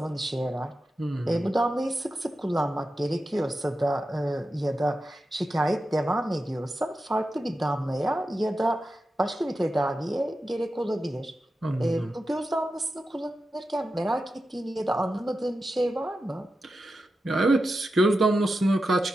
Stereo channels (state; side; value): normal; both; correlation 0.91